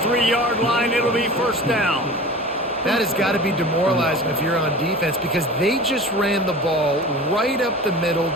line. It'll be 1st down. That has got to be demoralizing if you're on defense because they just ran the ball right up the middle,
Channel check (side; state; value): both; normal; correlation 0.37